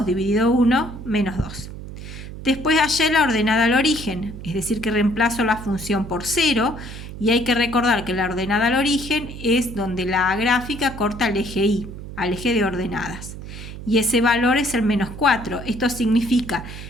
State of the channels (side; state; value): right; noise; hum, 11 dB below the sound